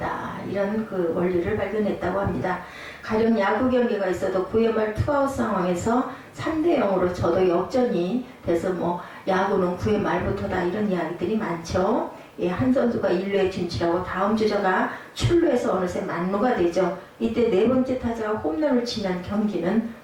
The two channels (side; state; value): both; identical; correlation 1.00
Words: 이런 그 원리를 발견했다고 합니다. 가령 야구 경기가 있어도 9회 말 투아웃 상황에서 3대0으로 저도 역전이 돼서 야구는 9회 말부터다 이런 이야기들이 많죠. 예, 한 선수가 1루에 진출하고 다음 주자가 출루해서 어느새 만루가 되죠. 이때 네 번째 타자가 홈런을 치면 경기는